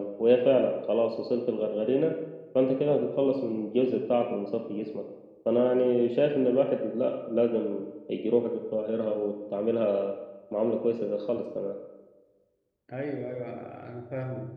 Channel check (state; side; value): identical; both; correlation 1.00